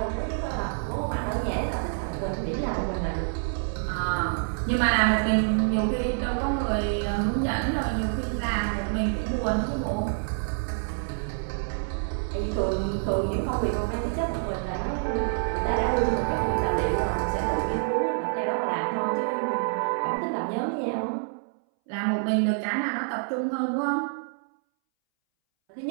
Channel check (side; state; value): left; silent; 60 dB below the other